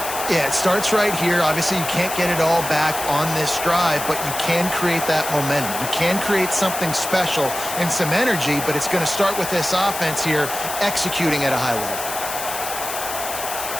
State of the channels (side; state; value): left; noise; hiss, 6 dB below the sound